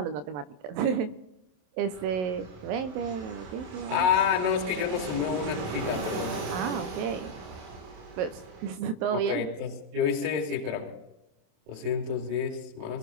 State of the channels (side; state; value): left; late; 27 ms